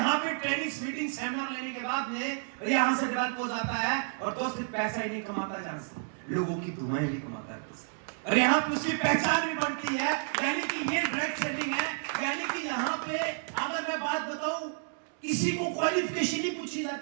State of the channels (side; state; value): left; silent; 57 dB below the other